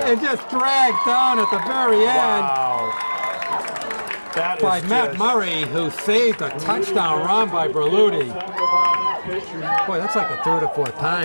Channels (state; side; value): inverted; both; correlation -1.00